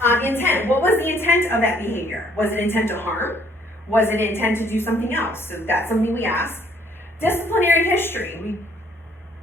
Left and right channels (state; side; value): normal; both; correlation 0.63